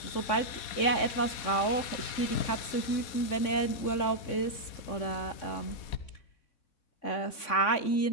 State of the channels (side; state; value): right; late; 3.5 ms